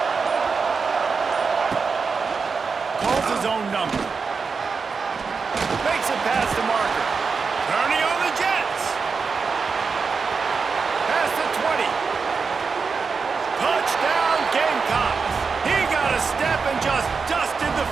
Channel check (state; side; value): quieter; left; 5.1 dB